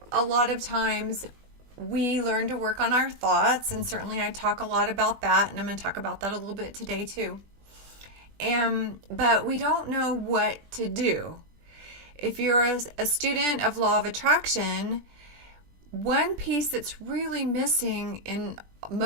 a lot of times we learn to work on our thoughts, and certainly I talk a lot about that, and I'm going to talk about that a little bit today too. But we don't know what to do. If you're a student of law of attraction, one piece that's really missing in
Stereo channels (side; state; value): left; late; 20 ms